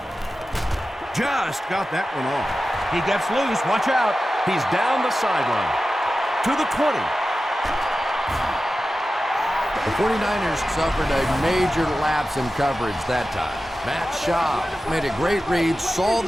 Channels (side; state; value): both; normal; correlation 0.94